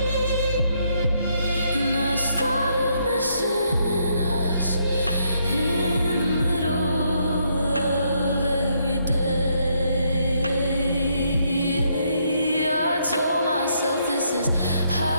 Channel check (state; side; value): inverted; both; correlation -0.74